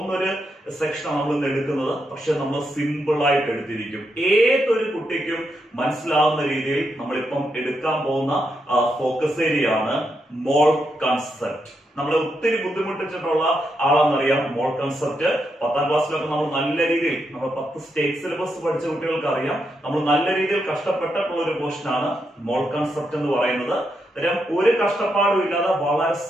ഒരു സെക്ഷനാണ് നമ്മൾ ഇന്ന് എടുക്കുന്നത്. പക്ഷെ നമ്മൾ സിമ്പിൾ ആയിട്ട് എടുത്തിരിക്കും. ഏതൊരു കുട്ടിക്കും മനസ്സിലാവുന്ന രീതിയിൽ നമ്മളിപ്പം എടുക്കാൻ പോകുന്ന ഫോക്കസ് ഏരിയ ആണ് മോൾ കൺസെപ്റ്റ്. നമ്മളെ ഒത്തിരി ബുദ്ധിമുട്ടിച്ചിട്ടുള്ള ആളെന്നറിയാം മോൾ കൺസെപ്റ്റ്. 10ാം ക്ലാസ്സിലൊക്കെ നമ്മൾ നല്ല രീതിയിൽ, നമ്മൾ 10 സ്റ്റേറ്റ് സിലബസ് പഠിച്ച കുട്ടികൾക്ക് അറിയാം, നമ്മൾ നല്ല രീതിയിൽ കഷ്ടപ്പെട്ടിട്ടുള്ള ഒരു പോർഷനാണ് മോൾ കൺസെപ്റ്റ് എന്ന് പറയുന്നത്. ഒരു കഷ്ടപ്പാടും ഇല്ലാതെ വളരെ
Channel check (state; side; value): normal; both; correlation 0.82